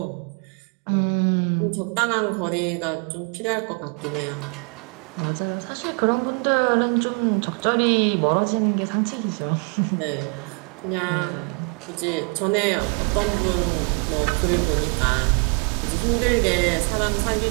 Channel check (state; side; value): quieter; left; 36.4 dB